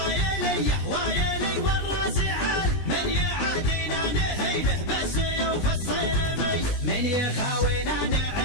وايلي والراس عالي، من يعادينا نهينه بس يوفى الصيرمي، من يخاوينا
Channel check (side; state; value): right; late; 20 ms